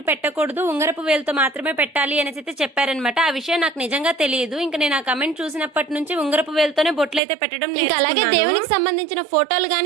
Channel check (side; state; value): left; drops out; at 7.2 s